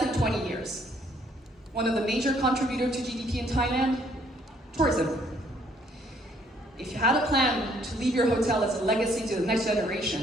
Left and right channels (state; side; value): normal; both; correlation 0.65